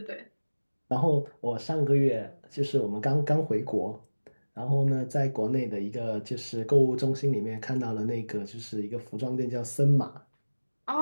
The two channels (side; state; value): both; inverted; correlation -1.00